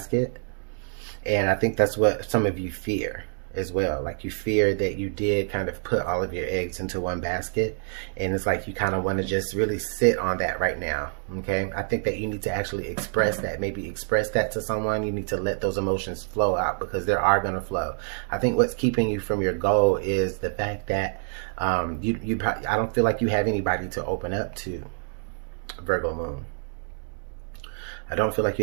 And I think that's what some of you fear as well. Like, you fear that you did kind of put all of your eggs into one basket, and it's like you kind of want to just really sit on that right now. Okay, I think that you need to actually express that. Maybe express that to someone. You need to let those emotions flow out, because they are going to flow. I think what's keeping you from your goal is the fact that I don't feel like you have anybody to open up to, Virgo moon. I don't feel like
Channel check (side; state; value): left; silent; digital silence